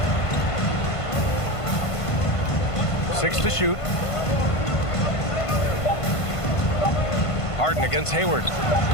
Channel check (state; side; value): late; right; 1.5 ms